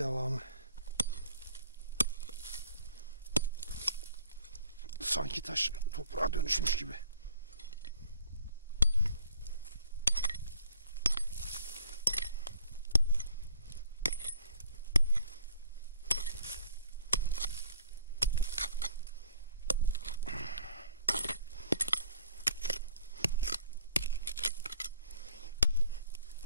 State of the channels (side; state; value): both; inverted; correlation -0.55